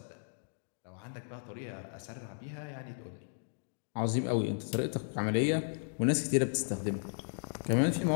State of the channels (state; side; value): silent; right; digital silence